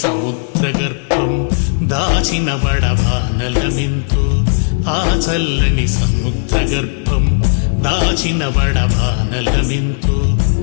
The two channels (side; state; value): right; silent; 65 dB below the other